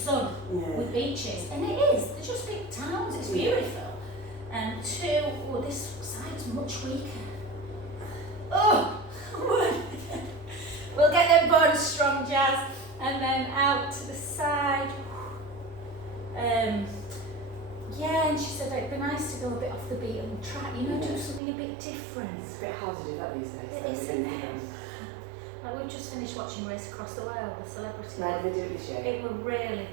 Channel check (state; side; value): drops out; left; at 21.4 s